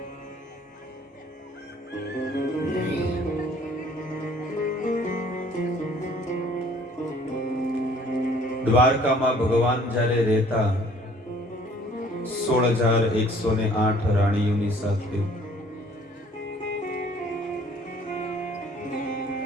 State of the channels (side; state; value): both; normal; correlation 0.56